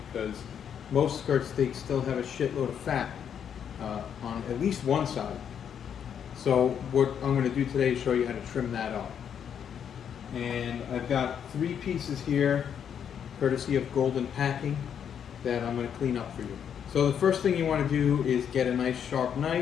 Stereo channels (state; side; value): quieter; right; 8.3 dB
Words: because most skirt steaks still have a shitload of fat on at least one side. So what I'm going to do today is show you how to trim that up. And I've got 3 pieces here, courtesy of Golden Packing, that I'm going to clean up for you. So the first thing you want to do is get a nice sharp